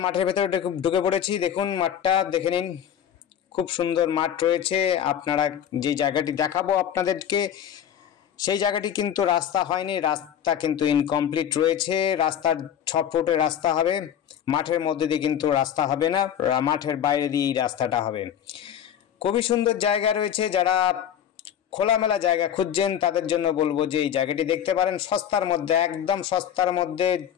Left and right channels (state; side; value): quieter; right; 9.5 dB